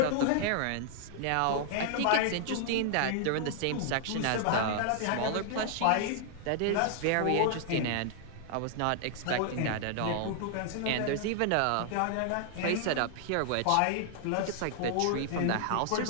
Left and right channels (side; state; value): both; different; correlation 0.00